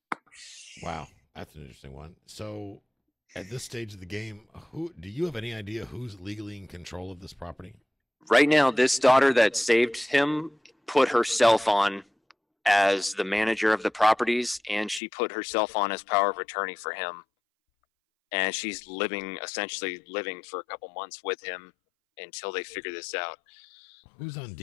Wow, that's an interesting one. So at this stage of the game, do you have any idea who's legally in control of this property? Right now, this daughter that saved him put herself on as the manager of the properties, and she put herself on as power of attorney for him. And she's essentially living for a couple months with him until they figure this out. Who's on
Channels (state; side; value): drops out; right; at 15.0 s